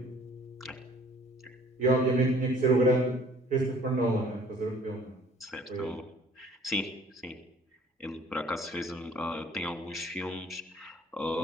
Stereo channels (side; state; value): both; normal; correlation 0.55